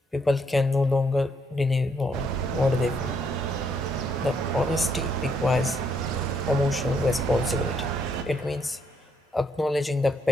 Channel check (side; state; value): both; normal; correlation 0.72